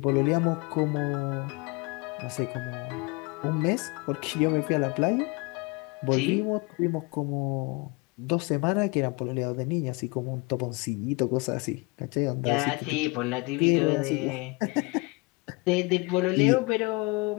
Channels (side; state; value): right; quieter; 27.9 dB